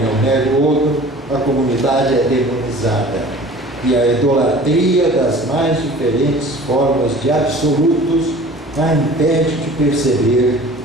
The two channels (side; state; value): both; normal; correlation 0.44